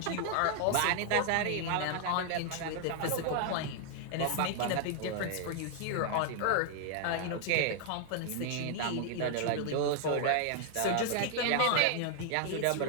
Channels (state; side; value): different; both; correlation 0.00